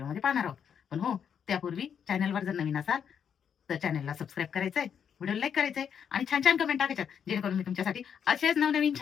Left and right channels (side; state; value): right; quieter; 7.8 dB